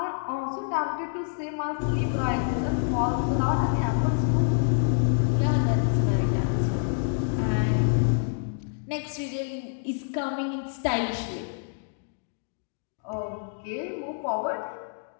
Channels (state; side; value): silent; right; digital silence